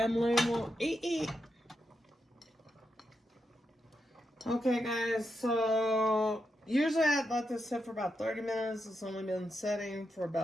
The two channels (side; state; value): both; normal; correlation 0.85